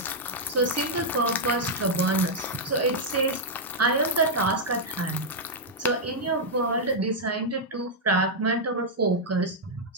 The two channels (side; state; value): both; normal; correlation -0.04